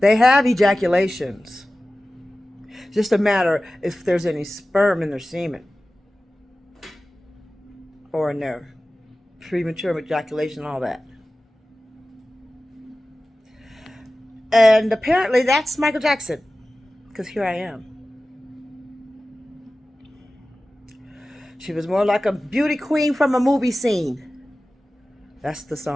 have ejaculations. It's just a matter if there's any sperm in their semen or in their premature ejaculation, all that. And apparently that's Michael Jackson, because here I am. She was more like a beauty queen from a movie scene. That's the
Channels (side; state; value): both; normal; correlation 0.96